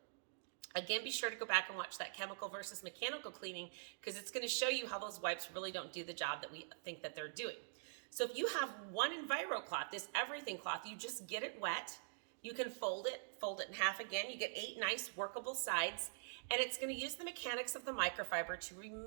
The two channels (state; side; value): silent; left; digital silence